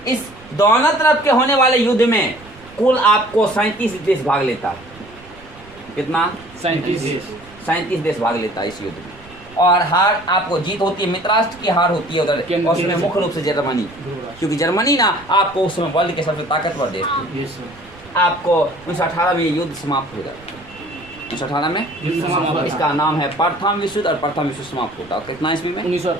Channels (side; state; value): right; noise; rumble, 22 dB below the sound